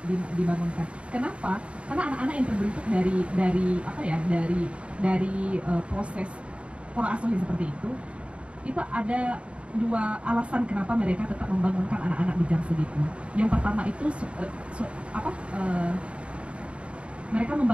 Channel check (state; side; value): late; left; 0.060 ms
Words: dibangunkan. Kenapa? Karena anak-anak yang terbentuk dari proses pola asuh yang seperti itu ada dua alasan kenapa mereka tetap membangunkan anak-anak di jam segitu. Yang pertama itu mereka